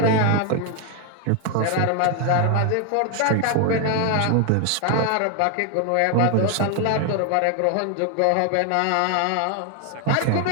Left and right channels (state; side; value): different; both; correlation 0.01